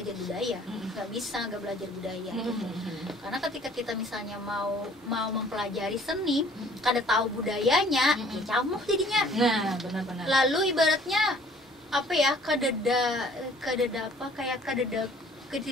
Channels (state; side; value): normal; both; correlation 0.55